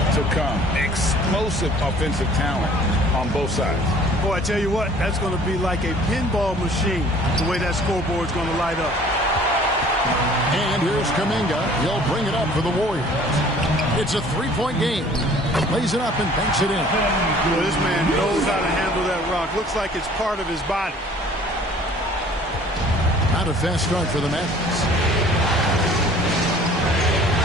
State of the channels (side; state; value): both; normal; correlation 0.52